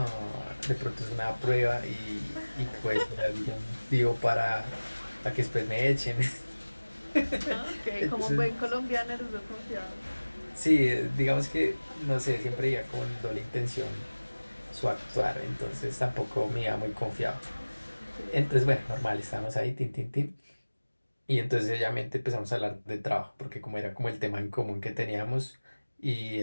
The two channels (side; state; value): both; inverted; correlation -1.00